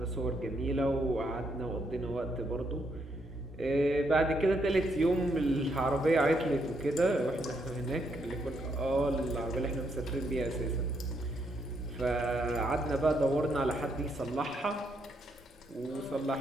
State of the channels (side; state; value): both; normal; correlation 0.76